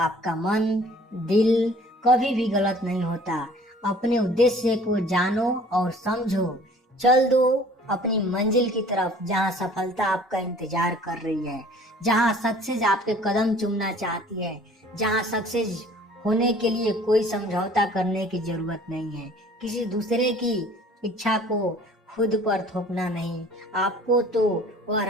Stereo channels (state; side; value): normal; both; correlation 0.51